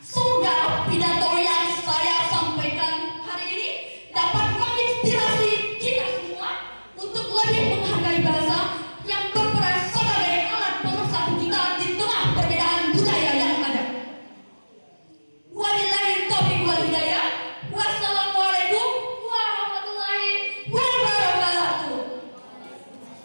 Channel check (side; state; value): both; inverted; correlation -1.00